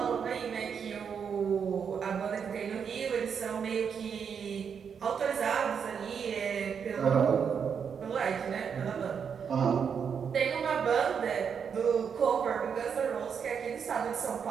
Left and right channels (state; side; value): quieter; left; 6.9 dB